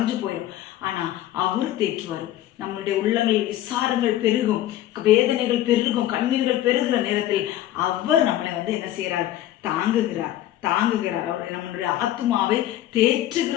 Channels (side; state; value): right; quieter; 13.4 dB